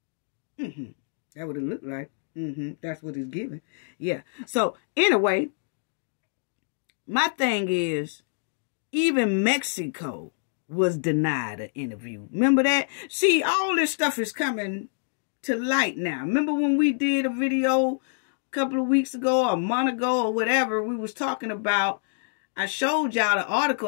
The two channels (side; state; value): right; silent; digital silence